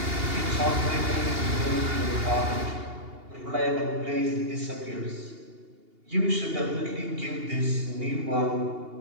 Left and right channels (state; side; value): late; left; 2.8 ms